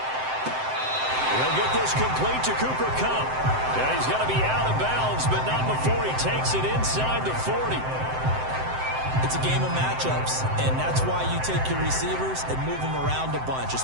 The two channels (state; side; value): late; left; 7.7 ms